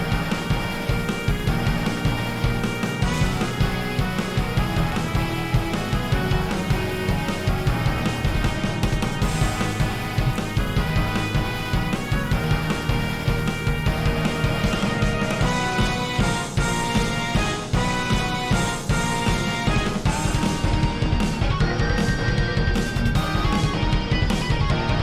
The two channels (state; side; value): identical; both; correlation 1.00